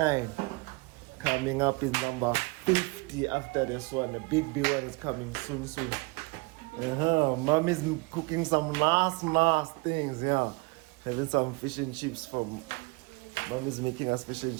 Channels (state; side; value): quieter; left; 26.6 dB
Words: Coming up is number 50 after this one. The big one is coming soon. Mommy's cooking some nice things, yeah. Having some fish and chips from Mommy's making us fish and